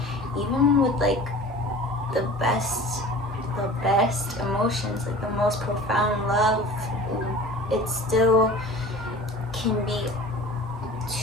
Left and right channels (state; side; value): normal; both; correlation 0.41